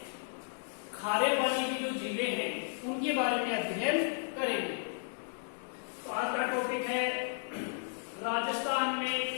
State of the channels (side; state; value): right; silent; digital silence